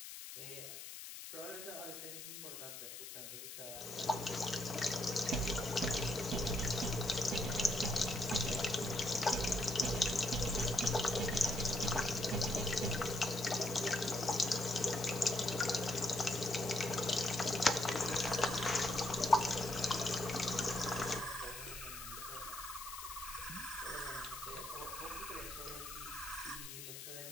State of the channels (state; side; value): noise; left; hiss, 10 dB below the sound